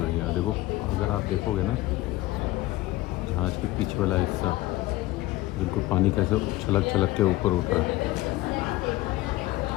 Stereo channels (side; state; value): right; quieter; 18.1 dB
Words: रही हैं। देखो, अगर आप देखोगे ना, जहाज़ के पीछे वाला हिस्सा बिल्कुल पानी कैसे छलक छलक के ऊपर उठ रहा है।